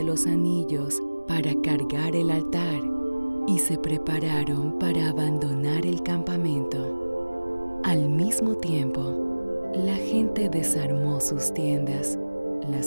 los anillos para cargar el altar, y se prepararon para abandonar el campamento. Al mismo tiempo, la gente desarmó sus tiendas,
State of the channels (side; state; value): both; inverted; correlation -1.00